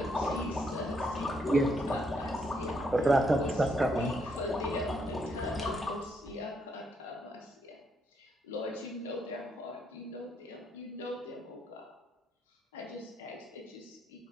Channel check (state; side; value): normal; both; correlation 0.75